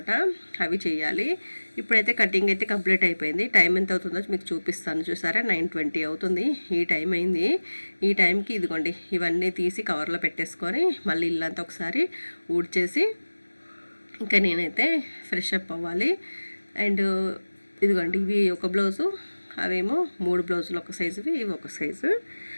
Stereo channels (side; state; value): both; inverted; correlation -1.00